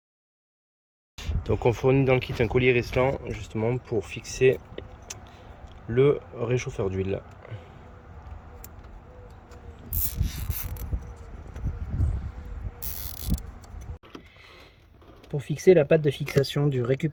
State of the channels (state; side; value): identical; both; correlation 1.00